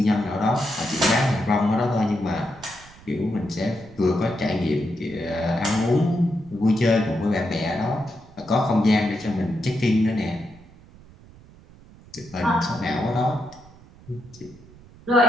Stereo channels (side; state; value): right; noise; rumble, 23 dB below the sound